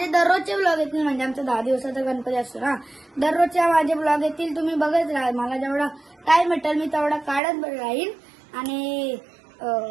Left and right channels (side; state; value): left; drops out; at 7.4 s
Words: दररोजचे ब्लॉग येतील म्हणजे आमचा 10 दिवसाचा गणपती असतो ना. दररोजच्या माझे ब्लॉग येतील. तुम्ही बघत राहा. मला जेवढा टाइम भेटेल मी तेवढा काढत राहीन. आणि